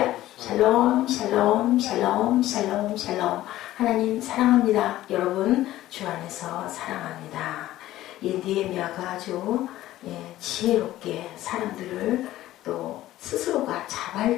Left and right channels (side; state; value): right; quieter; 14.9 dB